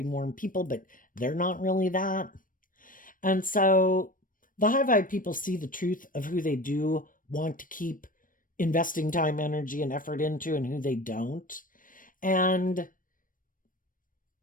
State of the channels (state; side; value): late; right; 0.40 ms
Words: warm people, but they're not really that. And so the high vibe people see the truth of who they do want to keep investing time, energy, and effort into, and who they don't. And,